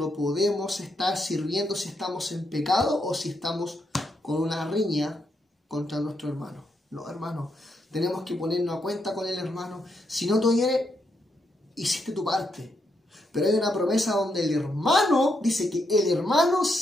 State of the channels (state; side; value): normal; both; correlation 0.80